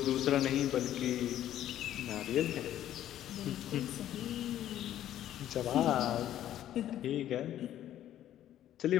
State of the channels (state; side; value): quieter; right; 12.0 dB